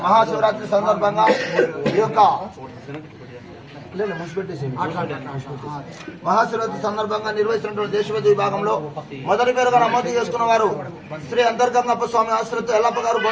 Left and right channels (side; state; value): both; identical; correlation 1.00